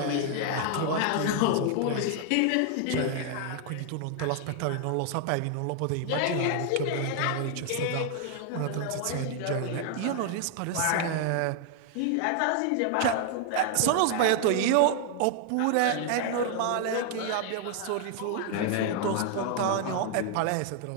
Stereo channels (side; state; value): both; different; correlation 0.00